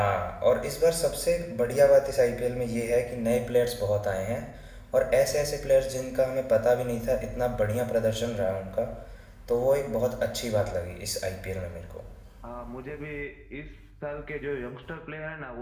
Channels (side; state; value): both; identical; correlation 1.00